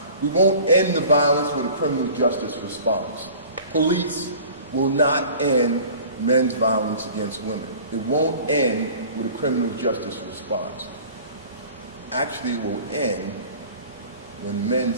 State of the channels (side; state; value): both; inverted; correlation -0.45